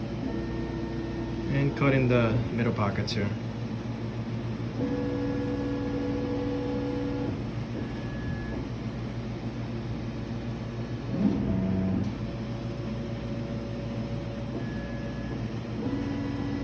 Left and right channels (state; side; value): identical; both; correlation 1.00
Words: And cutting the middle pockets here.